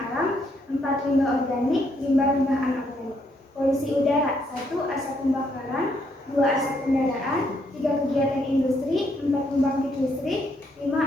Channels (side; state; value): both; normal; correlation 0.73